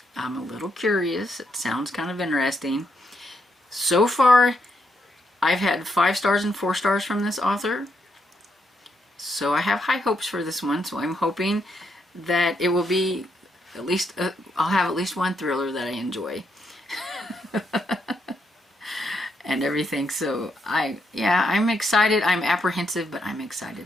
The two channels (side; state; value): both; normal; correlation 0.78